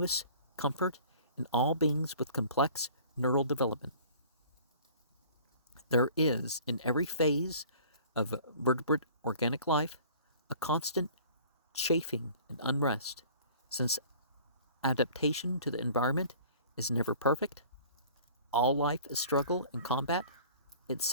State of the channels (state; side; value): inverted; both; correlation -0.48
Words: comfort in all beings with complex neural development. There is, in every phase of vertebrate organic life, a constant chafing and unrest, since adaptation to the environment is never perfect. All life is struggle and combat,